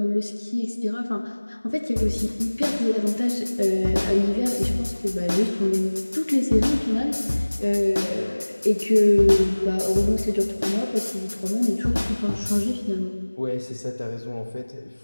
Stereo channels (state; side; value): inverted; both; correlation -1.00